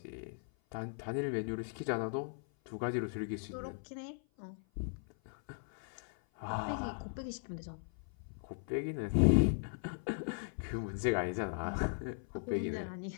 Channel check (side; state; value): right; silent; 52 dB below the other